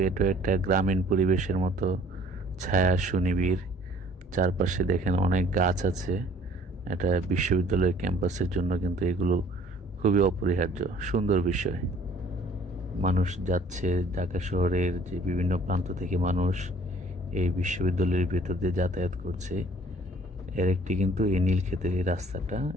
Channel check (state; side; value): normal; both; correlation 0.55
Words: এটা একটা গ্রামীণ পরিবেশের মতো ছায়া সুনিবিড়। চারপাশে দেখেন অনেক গাছ আছে। এটা বিশ্ববিদ্যালয়ের ক্যাম্পাসের জন্য কিন্তু এগুলো খুবই অপরিহার্য, সুন্দর বিষয়। মানুষ যাচ্ছে, ঢাকা শহরের যে বিভিন্ন প্রান্ত থেকে মানুষ এই বিশ্ববিদ্যালয়ের ভেতর দিয়ে যাতায়াত করছে। এর একটি কিন্তু এই নীলক্ষেতের এই রাস্তাটা,